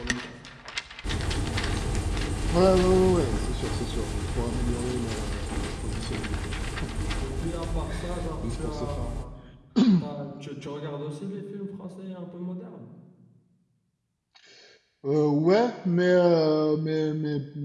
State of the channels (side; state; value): both; identical; correlation 1.00